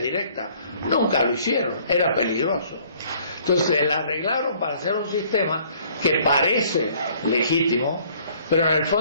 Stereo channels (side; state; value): both; inverted; correlation -0.59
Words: Nunca lo hicieron, era peligroso. Entonces la arreglaron para hacer un sistema que parece legítimo, pero en el